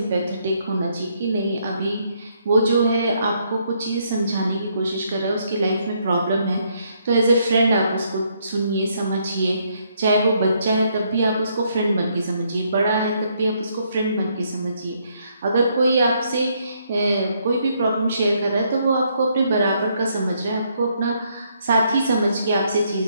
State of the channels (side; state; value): both; inverted; correlation -0.72